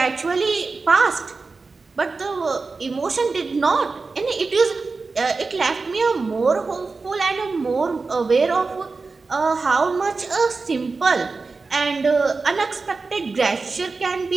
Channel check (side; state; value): left; quieter; 4.1 dB